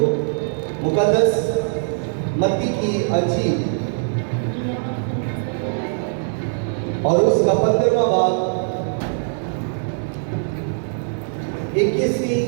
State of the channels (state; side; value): silent; left; 61 dB below the other